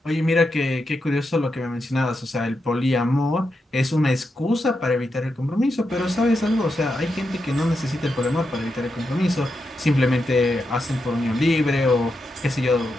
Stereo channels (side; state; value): both; normal; correlation 0.86